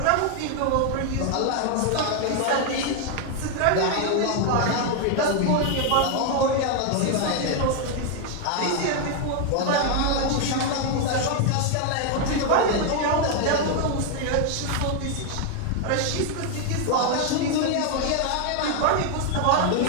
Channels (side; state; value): both; different; correlation 0.01